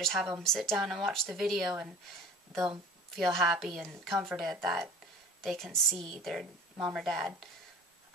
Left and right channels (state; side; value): normal; both; correlation 0.42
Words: have them sit down and watch the video, and they'll feel happy and comforted that they can see their mom or dad